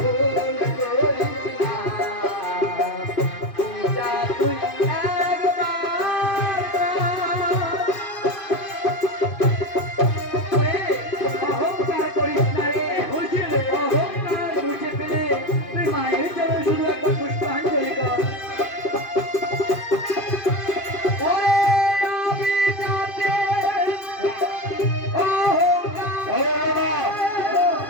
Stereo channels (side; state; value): right; late; 2.5 ms